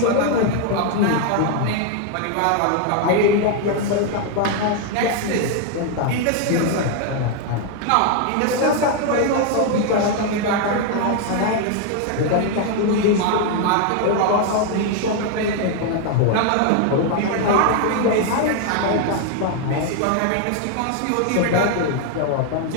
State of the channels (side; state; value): both; different; correlation 0.00